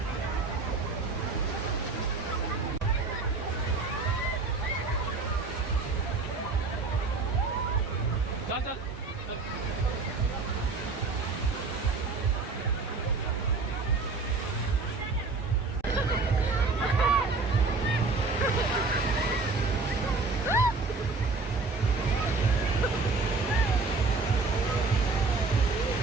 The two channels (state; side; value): quieter; left; 3.9 dB